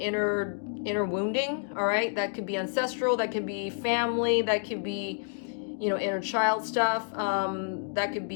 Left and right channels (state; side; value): silent; right; digital silence